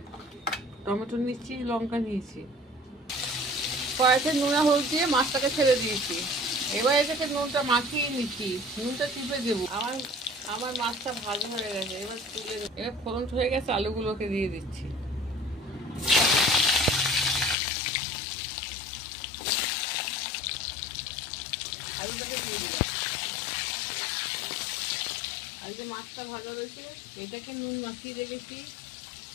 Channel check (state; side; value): drops out; right; at 17.6 s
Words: টমেটো নিচ্ছি, লঙ্কা নিয়েছি। কড়াইতে নুনা হলুদ দিয়ে মাছটাকে ছেড়ে দিয়েছি। এবার এটাকে নুনটা মাখিয়ে নিচ্ছি, নুনটা চিপে দেবো। আমার আমার মাছটা ভালো হয়ে গেছে, এবার তুলে এবার ফোড়ন হয়ে গেছে, আলুগুলোকে দিয়ে দিচ্ছি। আলুটাকে দিয়ে দিলাম। আর যে মাছটা ভাজা রয়েছে এটাকে নুন মাখিয়ে রেখেছি,